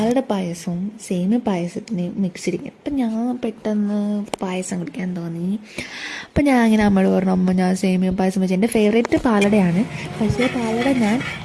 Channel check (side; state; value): both; identical; correlation 1.00